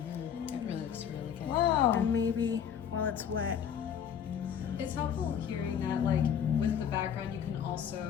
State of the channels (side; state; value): right; quieter; 8.4 dB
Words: really looks really good. Wow. And maybe while it's wet. It's helpful hearing that, like, with the background, you can